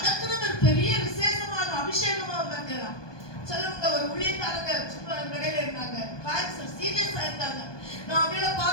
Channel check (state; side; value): late; right; 1.2 ms